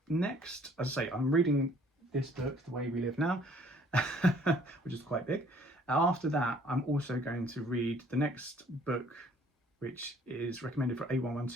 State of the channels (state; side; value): normal; both; correlation 0.58